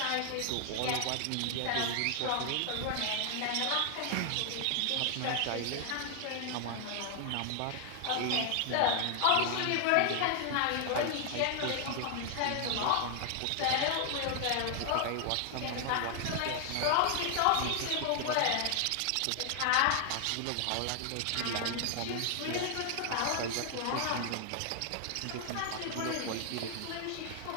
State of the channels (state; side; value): different; both; correlation 0.00